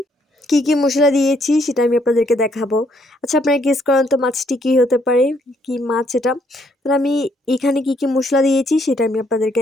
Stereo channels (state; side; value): normal; both; correlation 0.70